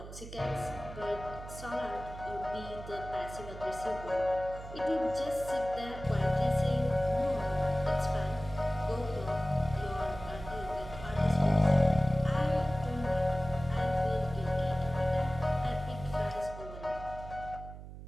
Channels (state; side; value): noise; right; hum, 13 dB below the sound